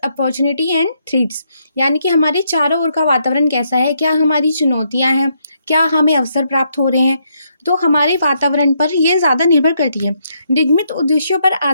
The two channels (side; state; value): both; inverted; correlation -0.76